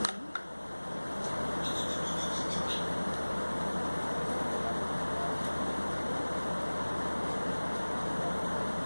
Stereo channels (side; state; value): both; inverted; correlation -1.00